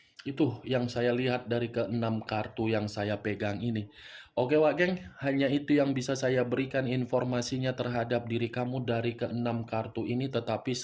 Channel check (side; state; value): both; identical; correlation 1.00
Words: Itu yang saya lihat dari ke-6 kartu yang saya pegang ini. Oke Wak Geng, hanya itu yang bisa saya berikan informasinya terhadap diri kamu dari ke-6 kartu ini. Tetapi